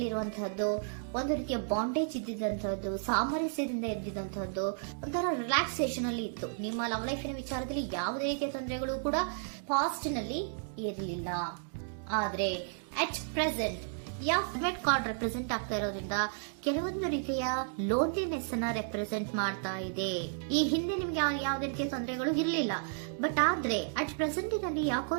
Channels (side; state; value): left; silent; digital silence